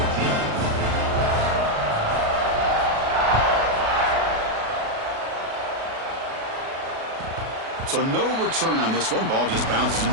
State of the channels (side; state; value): left; late; 37 ms